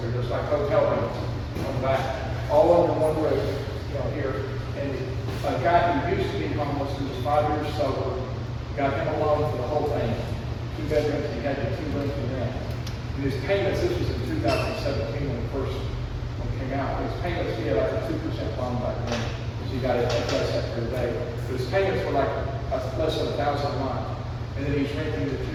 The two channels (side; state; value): both; identical; correlation 1.00